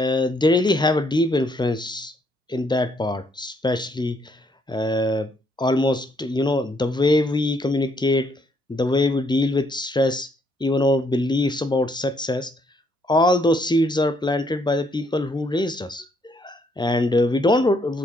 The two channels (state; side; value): normal; both; correlation 0.70